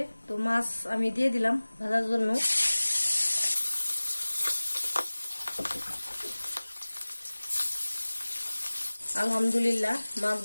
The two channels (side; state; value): both; inverted; correlation -1.00